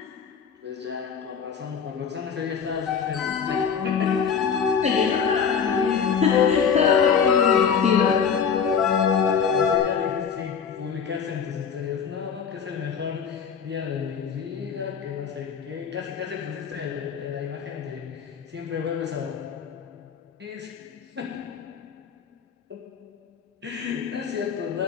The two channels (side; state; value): right; quieter; 6.7 dB